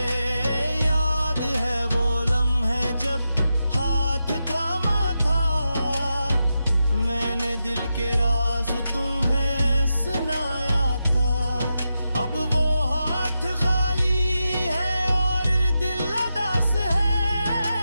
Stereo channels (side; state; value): both; inverted; correlation -0.88